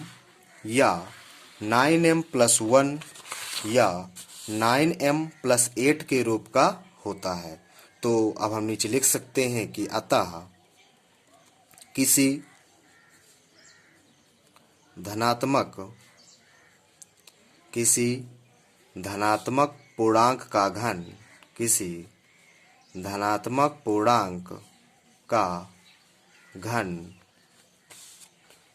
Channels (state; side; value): identical; both; correlation 1.00